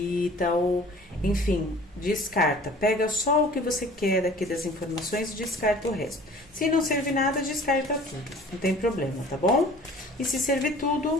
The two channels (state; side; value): normal; both; correlation 0.48